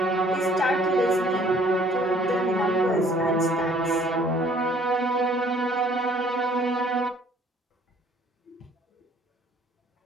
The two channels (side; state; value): both; normal; correlation 0.59